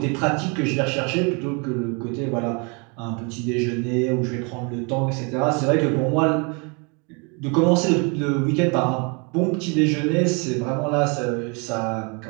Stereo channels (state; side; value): quieter; left; 32.8 dB